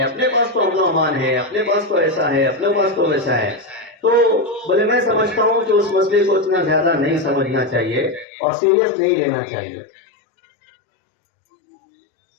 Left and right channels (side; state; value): right; drops out; at 8.2 s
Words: اپنے پاس تو امن و امان ہے، اپنے پاس تو ایسا ہے، اپنے پاس تو ویسا ہے۔ تو بولے میں سمجھتا ہوں کہ اس مسئلے کو اتنا زیادہ نہیں سمجھنا چاہیے اور سیریس نہیں لینا چاہیے۔